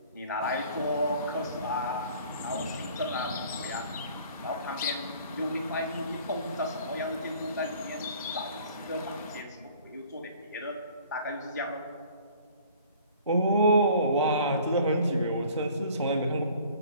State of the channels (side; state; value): both; inverted; correlation -0.52